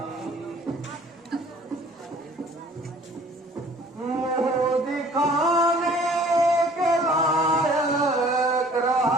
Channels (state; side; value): normal; both; correlation 0.53